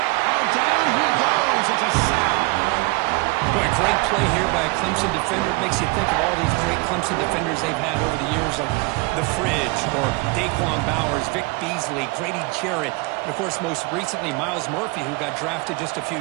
Oh, down he goes. It's a sack. Boy, great play here by a Clemson defender. It makes you think of all these great Clemson defenders they've had over the years, like The Fridge or Daquan Bowers, Vic Beasley, Grady Jarrett, and, of course, most recently, Myles Murphy, who got drafted just a few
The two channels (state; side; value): quieter; left; 26.7 dB